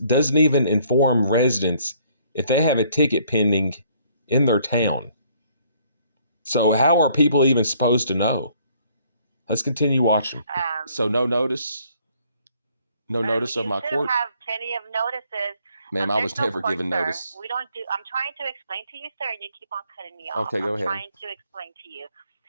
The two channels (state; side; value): inverted; both; correlation -0.63